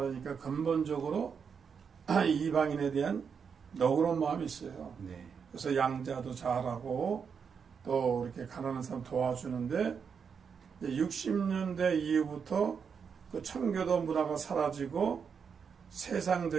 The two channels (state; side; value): quieter; left; 6.4 dB